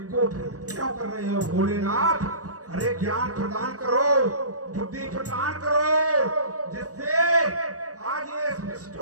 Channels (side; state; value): left; late; 0.66 ms